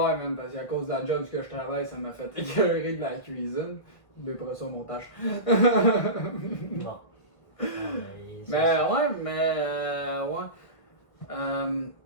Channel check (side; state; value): right; late; 1.6 ms